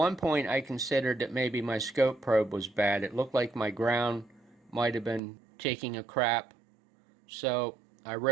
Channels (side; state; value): left; drops out; at 5.2 s